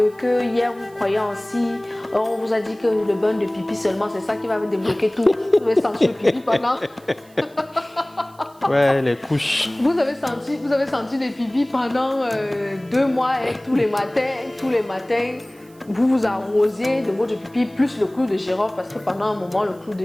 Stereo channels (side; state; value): right; noise; hiss, 29 dB below the sound